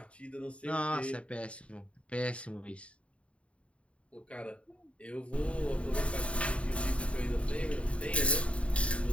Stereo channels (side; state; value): right; late; 0.062 ms